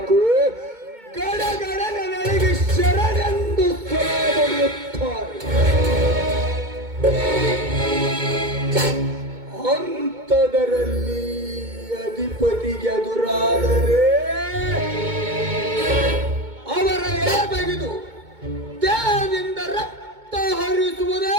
ಗಡಗಡ ನನಗೆ ಶರಣೆಂದು ಹೊಡೆಯುತ್ತಾರೆ. ಅಂಥದರಲ್ಲಿ ಅಧಿಪತಿಗೆ ಎದುರಾದರೆ ಅವರ ಎಳೆ ತೆಗೆದು ದೇಹದಿಂದ ರಕ್ತ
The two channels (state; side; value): late; left; 2.2 ms